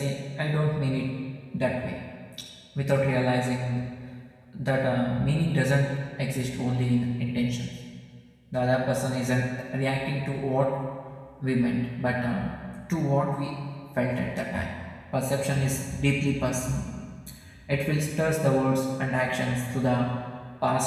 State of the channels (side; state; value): both; identical; correlation 1.00